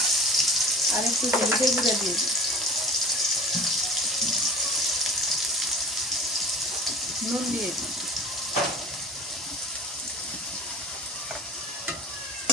আর একটু হলুদের গুঁড়া দিয়ে দিই। নুন দিয়ে দিই।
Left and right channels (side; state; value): both; normal; correlation 0.40